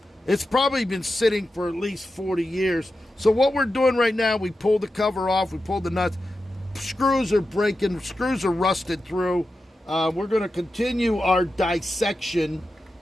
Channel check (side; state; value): both; normal; correlation 0.91